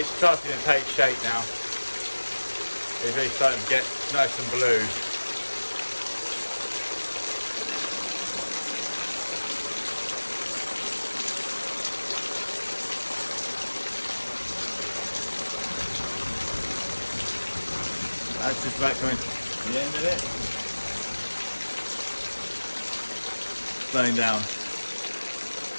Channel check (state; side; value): inverted; both; correlation -1.00